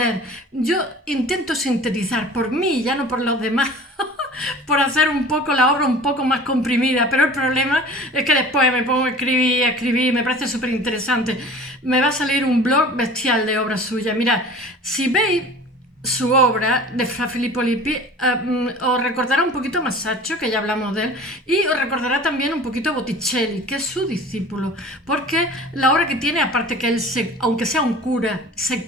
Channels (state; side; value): normal; both; correlation 0.42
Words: Yo intento sintetizar por mí, ya no por los demás, por hacer un poco la obra un poco más comprimida, pero el problema es que después me pongo a escribir, me parece súper interesante. Me va a salir un blog bestial de obras suyas. Mirad, si veis su obra de Fra Filippo Lippi, os recordará un poquito a Masaccio, que ya hablamos de él, y os recordará también un poquito a Botticelli, que es su discípulo, porque la obra que tiene, aparte que él, aunque sea un cura,